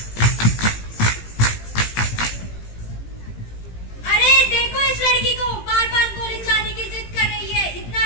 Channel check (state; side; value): late; right; 18 ms